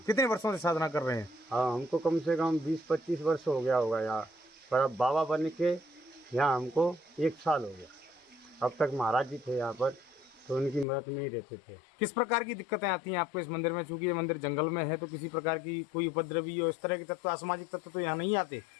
कितने वर्षों से साधना कर रहे हैं? हाँ, हमको कम से कम 20-25 वर्ष हो गया होगा यहाँ पर। अब बाबा बन के यहाँ हमको 1 साल हो गया। अब तक महाराज जी थे यहाँ पर, तो उनकी मदद में ही रहते थे। किस प्रकार की दिक्कतें आती हैं आपको इस मंदिर में? चूंकि ये मंदिर जंगल में है तो किसी प्रकार की कोई उपद्रवी और इस तरह के तत्व, असामाजिक तत्व तो यहाँ नहीं आते?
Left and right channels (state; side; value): drops out; right; at 10.9 s